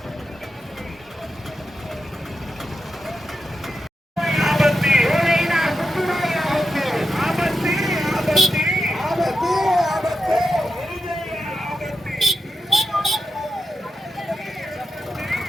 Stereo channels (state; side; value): normal; both; correlation 0.88